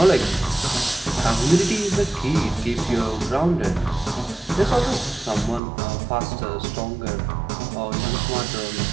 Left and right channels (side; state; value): left; drops out; at 5.6 s